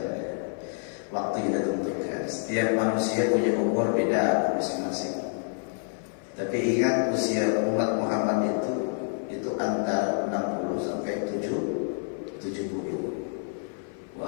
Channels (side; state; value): right; silent; 56 dB below the other